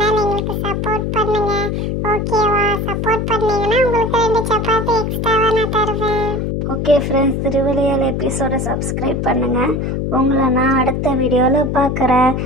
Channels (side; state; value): left; noise; hum, 1 dB below the sound